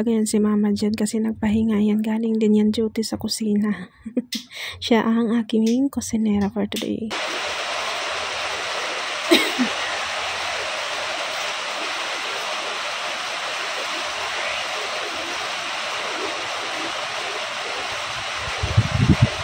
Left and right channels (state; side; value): identical; both; correlation 1.00